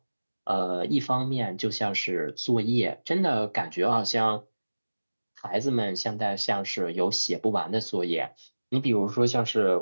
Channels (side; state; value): both; inverted; correlation -1.00